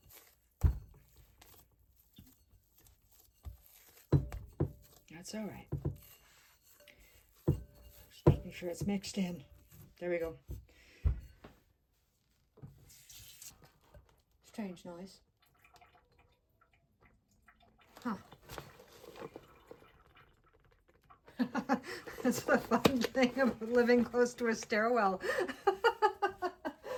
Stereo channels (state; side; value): identical; both; correlation 1.00